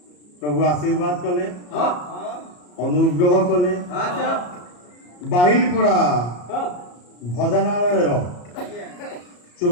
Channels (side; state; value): right; late; 34 ms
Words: ପ୍ରଭୁ ଆଶୀର୍ବାଦ କଲେ, ହଁ ଅନୁଗ୍ରହ କଲେ। ଆଚ୍ଛା ବାହିଲପଡ଼ା ହଁ ଭଜନାଳୟର ଆଜ୍ଞା